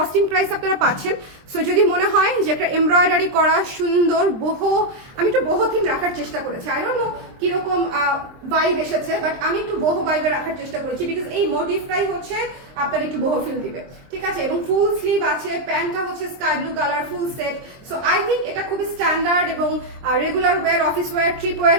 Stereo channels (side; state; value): left; late; 23 ms